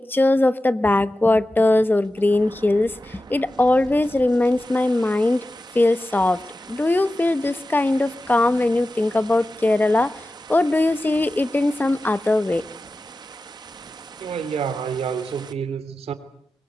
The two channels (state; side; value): normal; both; correlation 0.94